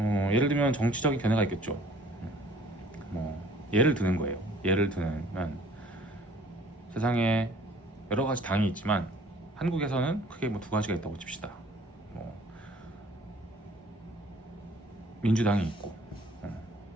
들면 정치적인 견해가 있겠죠. 뭐 예를 드는 거예요. 예를 들면 세상에 여러 가지 당이 있지만 한국에서는 크게 뭐 두 가지가 있다고 칩시다. 뭐 민주당이 있고,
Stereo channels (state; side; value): normal; both; correlation 0.54